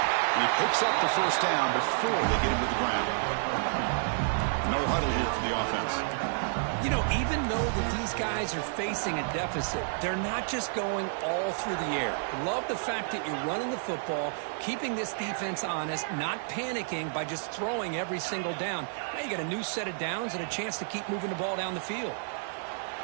And he picks up the first down before they get him to the ground. No huddle here for the offense. You know, even though that these guys are facing a deficit, they're not just going all through the air. Love the fact that you're running the football, keeping this defense honest, not panicking by just throwing every single down. Now you got a new set of downs and a chance to keep moving the ball down the field.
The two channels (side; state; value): left; silent; 58 dB below the other